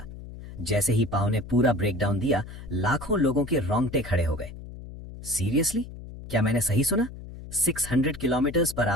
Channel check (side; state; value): left; noise; hum, 13 dB below the sound